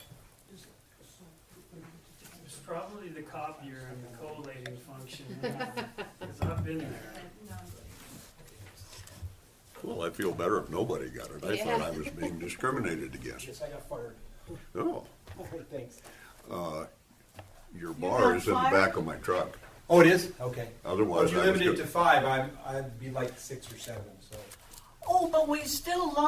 It's probably the copier and the collating function, because I've been there. Well, I feel better if nobody got it. I Yeah. thought I was being discriminated against. Yes, I got fired. Oh, All right, thanks. your got bar is in the fired? back of my truck. Oh, it is? Okay. Otherwise, If you I was limit it good. to 5, I'd be like 6 or 7, so. Oh, but we still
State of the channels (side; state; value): both; identical; correlation 1.00